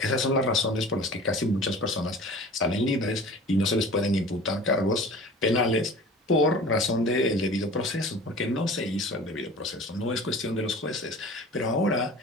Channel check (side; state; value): both; normal; correlation 0.41